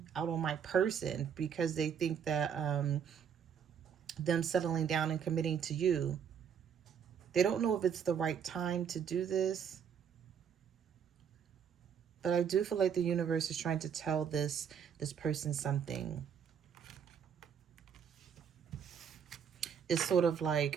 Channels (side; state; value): left; quieter; 7.7 dB